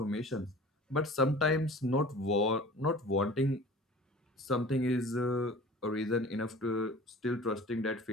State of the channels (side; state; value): both; normal; correlation 0.43